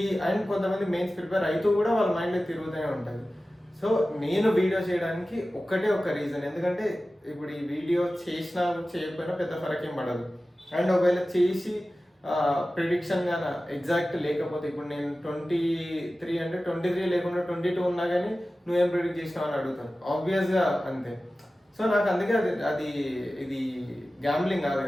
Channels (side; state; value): both; normal; correlation 0.95